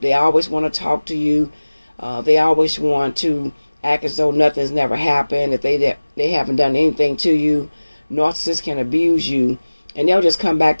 They always want to talk to you. They always want to act as though nothing's never happened, that they haven't done anything to you. Narcissists can abuse you, and they'll just come back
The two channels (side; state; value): both; inverted; correlation -1.00